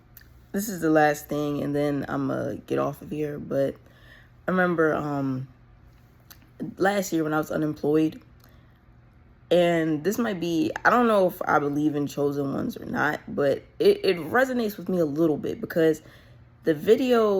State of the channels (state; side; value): identical; both; correlation 1.00